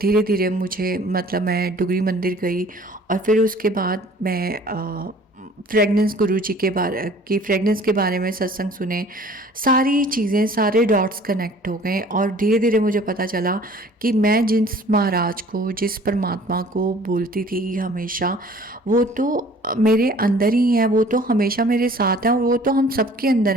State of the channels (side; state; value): both; normal; correlation 0.51